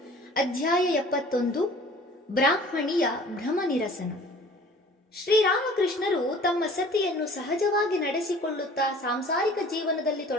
ಅಧ್ಯಾಯ 71, ಬ್ರಾಹ್ಮಣಿಯ ಭ್ರಮ ನಿರಸನ. ಶ್ರೀರಾಮಕೃಷ್ಣರು ತಮ್ಮ ಸತಿಯನ್ನು ಸಹಜವಾಗಿ ನಡೆಸಿಕೊಳ್ಳುತ್ತಾ ಸಾಂಸಾರಿಕ ಜೀವನದಲ್ಲಿ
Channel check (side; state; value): both; normal; correlation 0.48